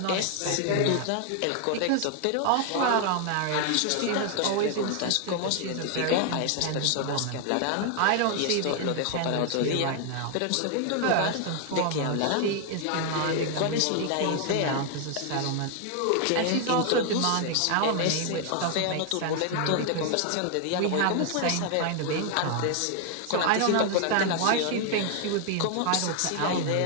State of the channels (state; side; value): different; both; correlation 0.00